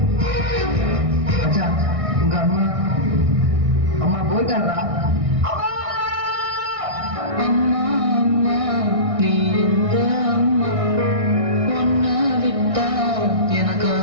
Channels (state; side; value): late; left; 1.6 ms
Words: மச்சான், உங்க அம்மா அம்மா போயிட்டாரா? அம்மா அம்மா, நீ எங்க அம்மா? உன்னை விட்டா